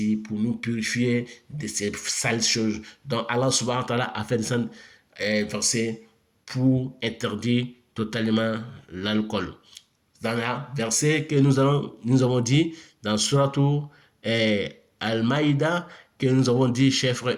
pour nous purifier de ces sales choses. Donc Allah subhanahu wa ta'ala a fait descendre un verset pour interdire totalement l'alcool. Dans le verset que nous avons dit dans Suratu Al-Maïda, que nous avons dit, chers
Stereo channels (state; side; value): identical; both; correlation 1.00